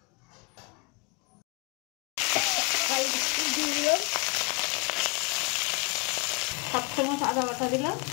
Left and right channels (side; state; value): right; quieter; 29.0 dB